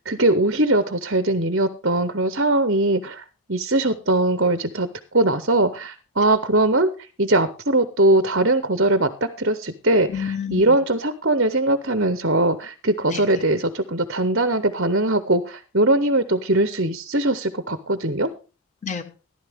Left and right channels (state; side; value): normal; both; correlation -0.12